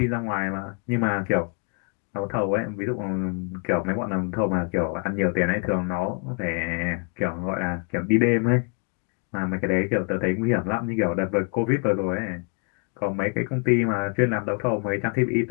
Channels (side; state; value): right; quieter; 36.6 dB